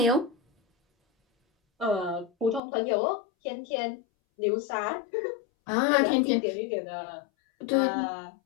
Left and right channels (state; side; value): drops out; right; at 2.6 s